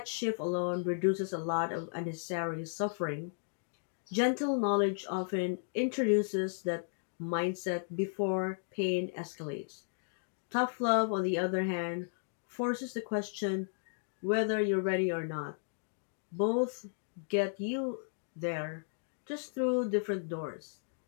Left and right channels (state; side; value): silent; right; digital silence